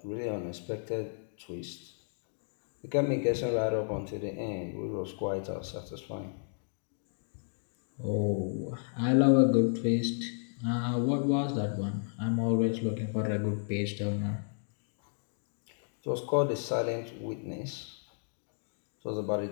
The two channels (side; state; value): right; silent; digital silence